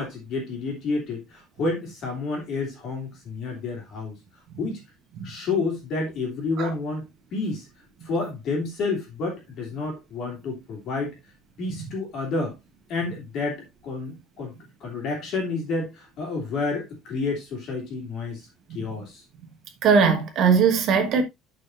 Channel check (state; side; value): normal; both; correlation 0.42